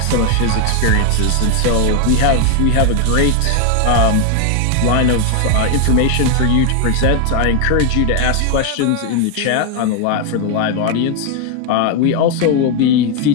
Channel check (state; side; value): different; both; correlation 0.01